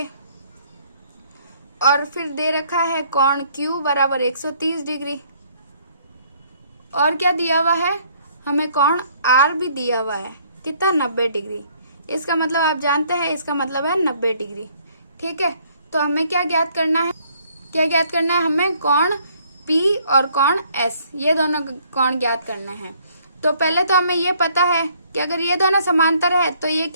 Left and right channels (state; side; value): inverted; both; correlation -0.63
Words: और फिर दे रखा है कोण Q बराबर 130 डिग्री, और क्या दिया हुआ है, हमें कोण R भी दिया हुआ है, कितना, 90 डिग्री। इसका मतलब आप जानते हैं, इसका मतलब है 90 डिग्री। ठीक है, तो हमें क्या ज्ञात करना है, क्या ज्ञात करना है, हमें कोण P और कोण S ये दोनों कोण ज्ञात करना है। तो पहले तो हमें ये पता है कि अगर ये दोनों समांतर है तो ये